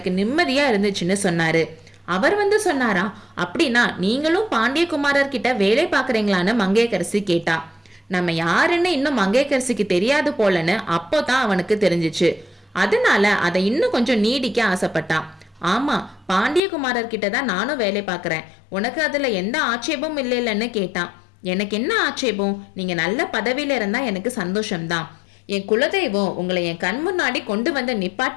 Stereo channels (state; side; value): drops out; right; at 16.6 s